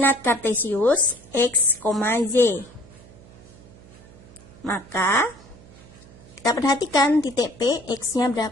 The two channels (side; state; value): right; noise; hum, 22 dB below the sound